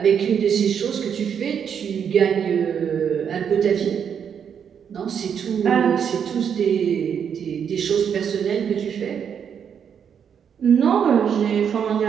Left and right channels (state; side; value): quieter; left; 7.7 dB